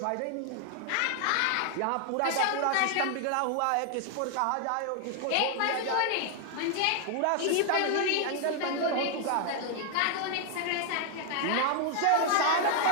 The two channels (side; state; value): both; different; correlation 0.00